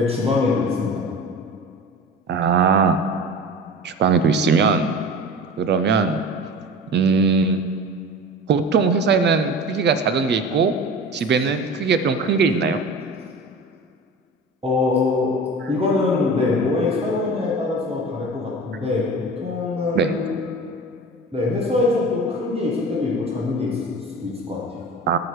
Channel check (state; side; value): normal; both; correlation 0.35